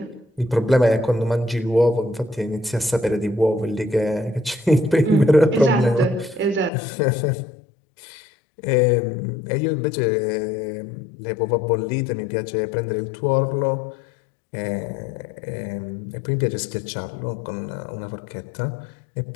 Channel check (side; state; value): right; drops out; at 6.7 s